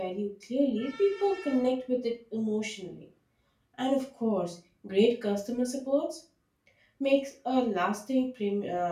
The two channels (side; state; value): both; identical; correlation 1.00